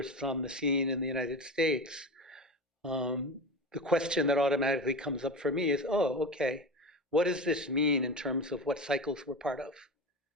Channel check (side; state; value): both; normal; correlation 0.26